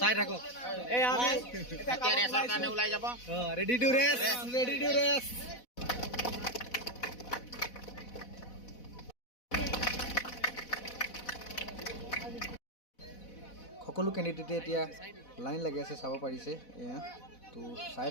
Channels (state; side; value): late; right; 4.1 ms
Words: চাই থাকক, ৰেডি টু ৰেচ। সকলো কেণ্ডিডেটে এতিয়া লাইন লাগি আছে, চাব পাৰিছে এয়া। তো চাই